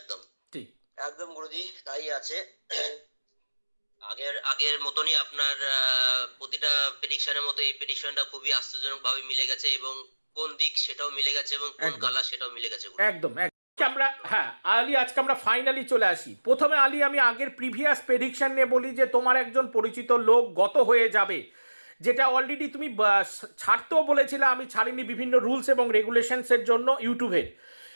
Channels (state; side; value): inverted; both; correlation -1.00